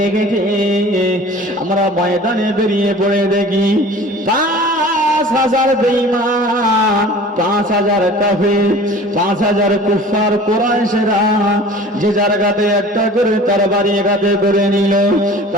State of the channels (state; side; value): normal; both; correlation 0.43